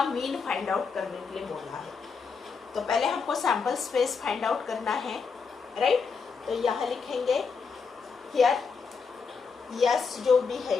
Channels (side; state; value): right; quieter; 5.3 dB